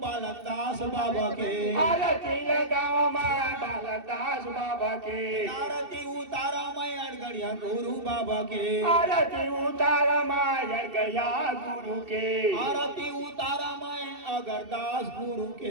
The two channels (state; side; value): late; left; 2.7 ms